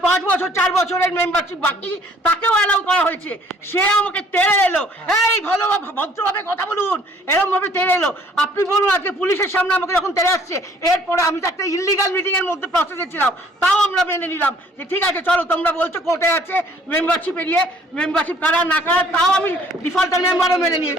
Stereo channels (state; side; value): normal; both; correlation 0.58